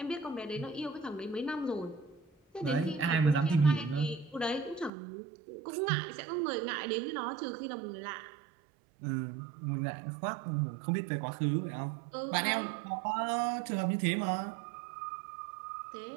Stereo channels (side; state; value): left; drops out; at 4.9 s